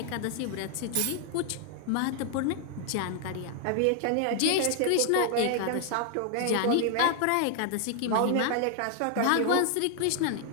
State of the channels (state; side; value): different; both; correlation 0.00